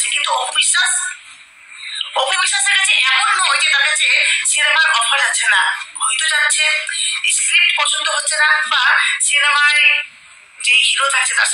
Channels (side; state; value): both; identical; correlation 1.00